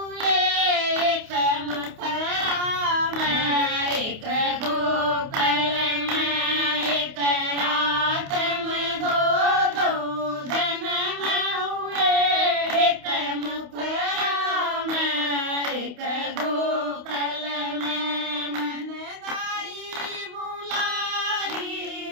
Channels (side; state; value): left; late; 28 ms